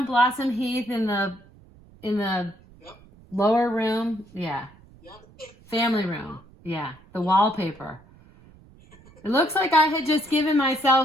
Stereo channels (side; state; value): right; noise; rumble, 25 dB below the sound